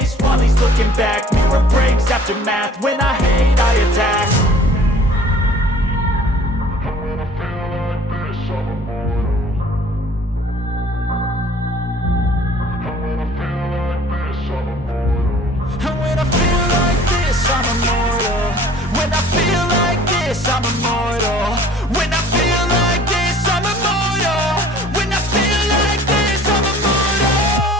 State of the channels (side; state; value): both; normal; correlation 0.51